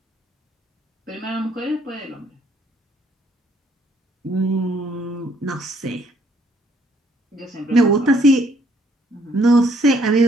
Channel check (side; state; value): both; normal; correlation 0.66